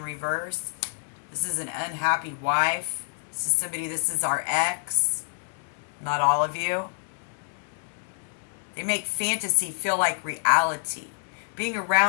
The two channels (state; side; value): silent; right; 60 dB below the other